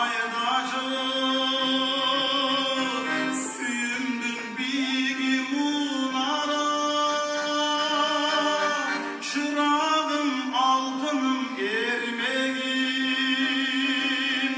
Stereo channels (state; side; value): identical; both; correlation 1.00